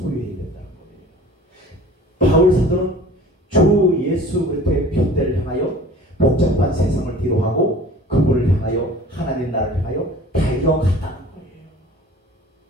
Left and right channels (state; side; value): normal; both; correlation 0.45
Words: 된다는 거예요. 바울 사도는 주 예수 그리스도의 편대를 향하여 복잡한 세상을 뒤로하고 그분을 향하여 하나님 나라를 향하여 달려갔다는 거예요.